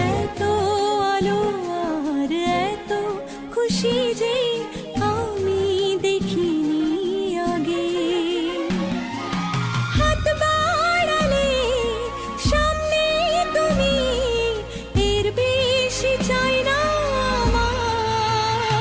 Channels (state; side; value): identical; both; correlation 1.00